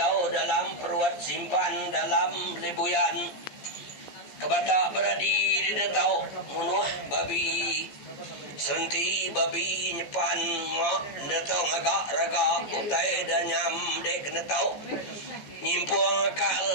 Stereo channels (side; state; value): right; late; 14 ms